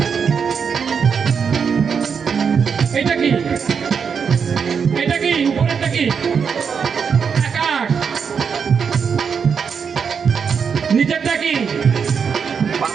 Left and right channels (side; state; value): left; quieter; 6.4 dB